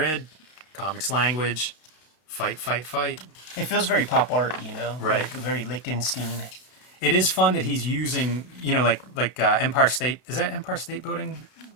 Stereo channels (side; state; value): right; late; 32 ms